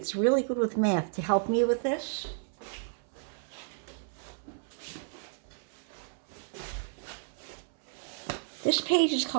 really good with math to help me with this. This page is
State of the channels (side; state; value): left; silent; 56 dB below the other